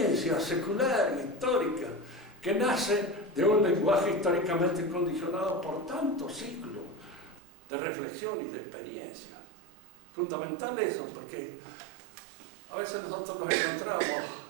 secular y histórica que nace de un lenguaje históricamente condicionado por tantos siglos de reflexión y de experiencia. Fundamental eso, porque a veces nosotros nos encontramos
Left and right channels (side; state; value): left; drops out; at 7.4 s